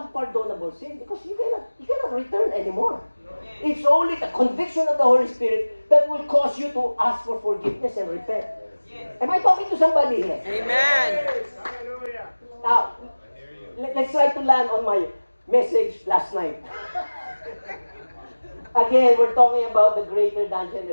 unpardonable sin, because you cannot return anymore. It's only the conviction of the Holy Spirit that will cause you to ask for forgiveness and repent. Am I talking to somebody here? Amen. Now, let's try to land on my message last night. Again, we're talking about the greater than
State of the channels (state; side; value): inverted; both; correlation -1.00